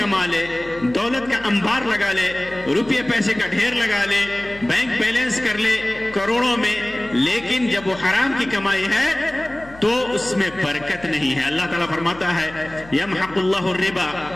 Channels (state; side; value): noise; left; hum, 20 dB below the sound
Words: لے، دولت کا انبار لگا لے، روپے پیسے کا ڈھیر لگا لے، بینک بیلنس کر لے کروڑوں میں، لیکن جب وہ حرام کی کمائی ہے تو اس میں برکت نہیں ہے۔ اللہ تعالیٰ فرماتا ہے: یمحق اللہ الربا